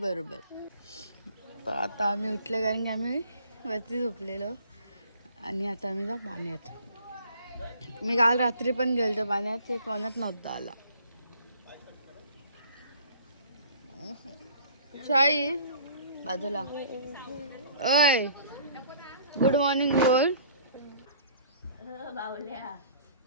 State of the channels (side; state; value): both; inverted; correlation -0.53